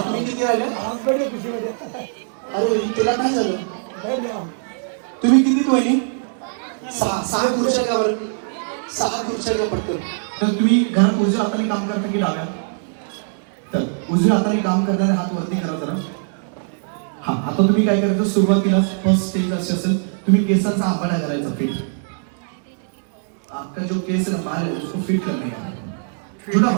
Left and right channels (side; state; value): left; silent; digital silence